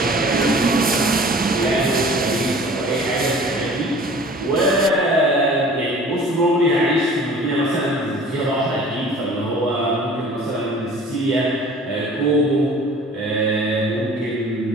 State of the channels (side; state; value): both; normal; correlation 0.46